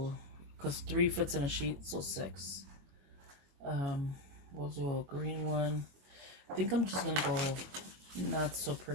because 3 fits in a sheet, so 6. We'll do a green one. I think I'm just going to go not so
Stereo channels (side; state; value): left; late; 22 ms